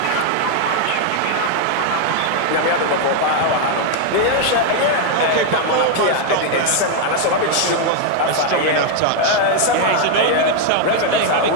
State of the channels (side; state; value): both; different; correlation 0.00